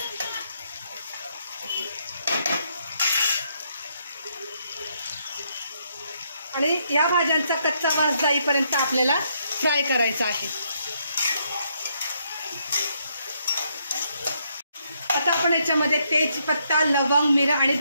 आणि या भाज्यांचा कच्चा वास जाईपर्यंत आपल्याला फ्राय करायचा आहे। आता आपण याच्यामध्ये तेजपत्ता, लवंग, मिरं आणि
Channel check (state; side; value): inverted; both; correlation -0.75